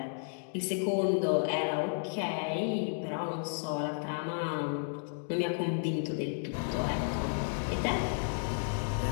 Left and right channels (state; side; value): silent; right; digital silence